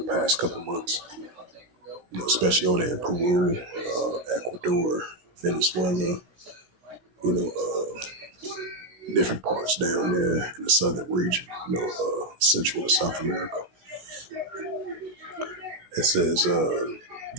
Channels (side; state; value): left; late; 17 ms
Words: past couple of months. Especially over there in Peru, Ecuador, Venezuela, different parts down there in the southern region, Central and South America. It says,